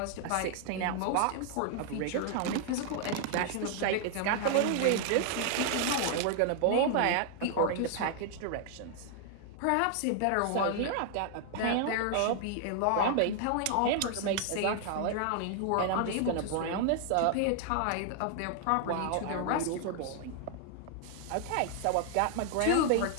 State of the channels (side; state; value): both; different; correlation 0.00